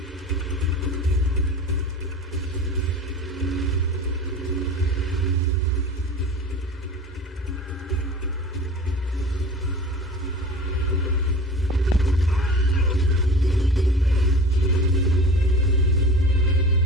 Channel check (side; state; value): both; normal; correlation 0.38